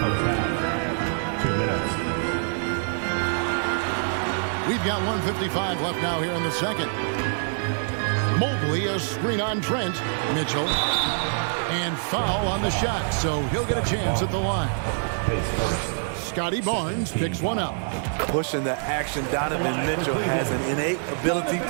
2 minutes. We've got 1:55 left now here in the second. Mobley, a screen on Trent. Mitchell. And foul on the shot, so he'll get a chance at the line. Scotty Barnes picks one up. Pushing the action, Donovan Mitchell has an innate ability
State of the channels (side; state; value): left; silent; 62 dB below the other